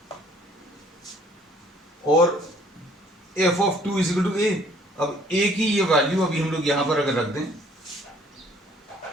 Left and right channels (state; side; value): normal; both; correlation 0.59